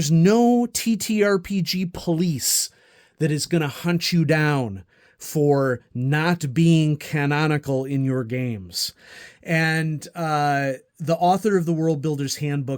no TTRPG police that is going to hunt you down for not being canonical in your games. And the author of the World Builder's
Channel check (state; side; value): identical; both; correlation 1.00